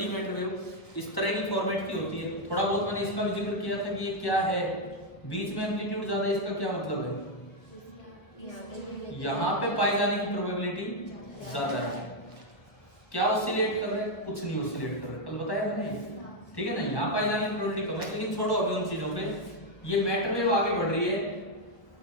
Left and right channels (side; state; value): right; late; 1.2 ms